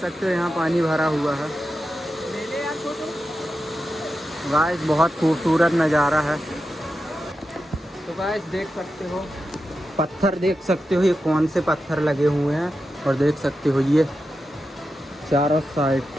हो यहाँ पानी भरा हुआ है। गाइस बहुत खूबसूरत नज़ारा है। तो गाइस देख सकते हो पत्थर, देख सकते हो ये कौन से पत्थर लगे हुए हैं। और देख सकते हो ये चारों साइड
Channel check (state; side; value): normal; both; correlation 0.90